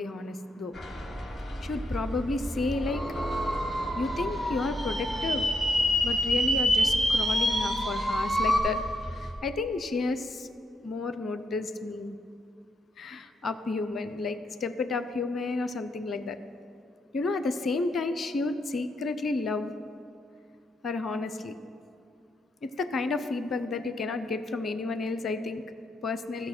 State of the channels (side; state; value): both; normal; correlation 0.79